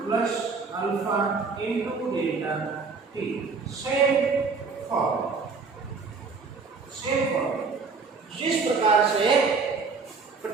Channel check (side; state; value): left; quieter; 4.7 dB